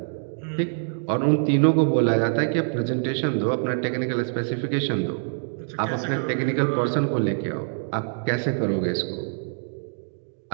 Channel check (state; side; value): silent; left; digital silence